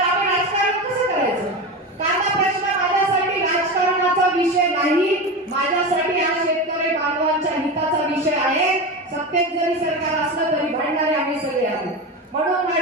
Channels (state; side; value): normal; both; correlation 0.22